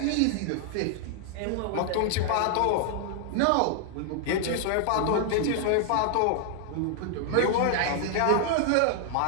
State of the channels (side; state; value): both; different; correlation 0.00